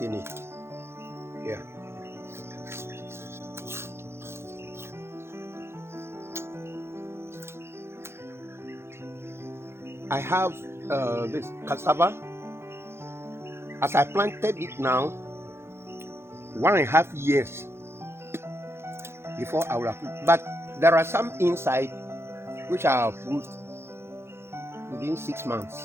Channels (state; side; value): late; left; 0.12 ms